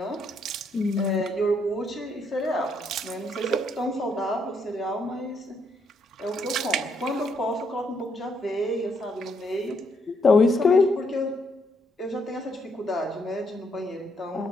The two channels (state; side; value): normal; both; correlation 0.74